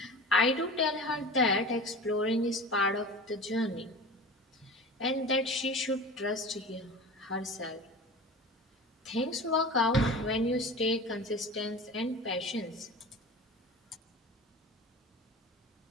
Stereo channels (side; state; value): both; normal; correlation 0.35